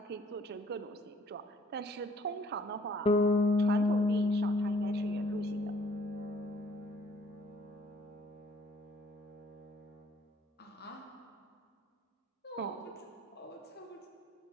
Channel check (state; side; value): normal; both; correlation 0.60